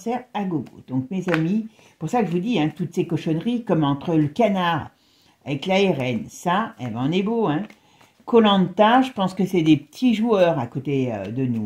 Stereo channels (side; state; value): both; identical; correlation 1.00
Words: à gogo. Donc, mes amis, pour ça que je vous dis, hein, toutes ces cochonneries, comme entre le canard avec l'ARN, ça, eh ben, on est beau. Hein. Koh-Lanta, je pense que c'est des petits joueurs à côté de